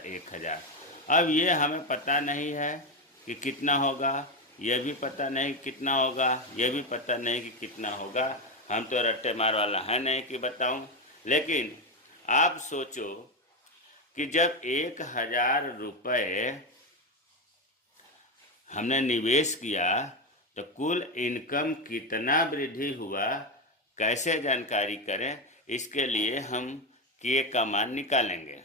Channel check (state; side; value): normal; both; correlation 0.12